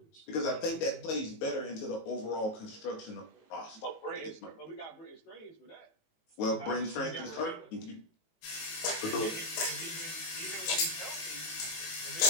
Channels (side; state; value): right; late; 18 ms